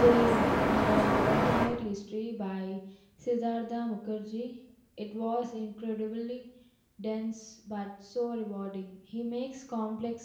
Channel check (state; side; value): identical; both; correlation 1.00